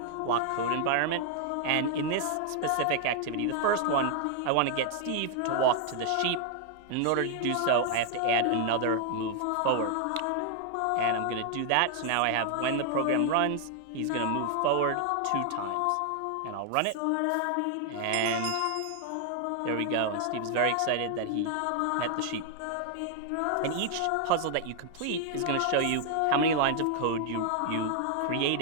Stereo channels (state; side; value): different; both; correlation 0.00